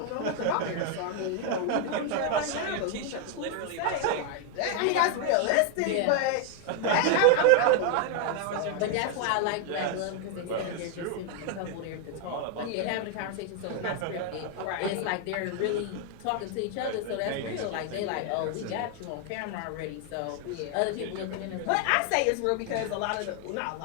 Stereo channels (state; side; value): different; both; correlation 0.00